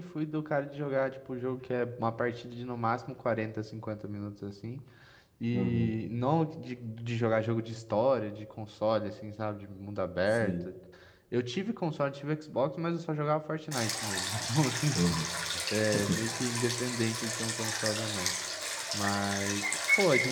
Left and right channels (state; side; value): identical; both; correlation 1.00